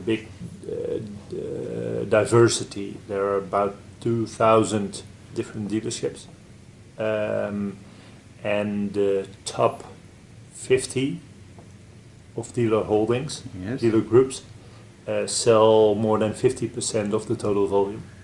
big diversity. There are about 2,000 different dealerships, and the top 50 of dealer holdings, yes, dealer groups, sell more than 50% of the total volume.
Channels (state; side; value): identical; both; correlation 1.00